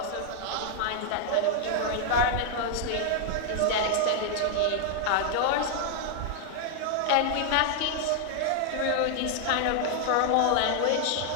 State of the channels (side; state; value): both; different; correlation 0.00